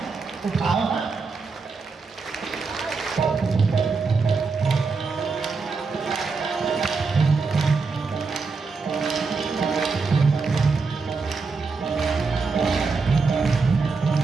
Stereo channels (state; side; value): quieter; left; 4.5 dB